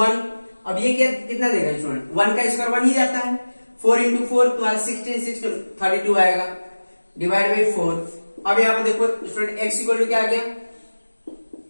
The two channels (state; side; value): inverted; both; correlation -1.00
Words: अब ये कितना देगा स्टूडेंट, 1 का स्क्वायर 1 ही जाता है, 4 इंटू 4 तुम्हारा 16 32 आएगा डिवाइड बाई 4। अब यहाँ पे देखो स्टूडेंट x इक्वल टू क्या आ गया